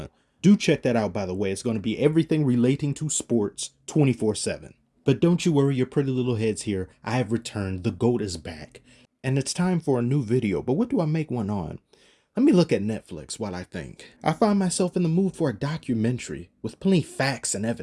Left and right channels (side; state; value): both; identical; correlation 1.00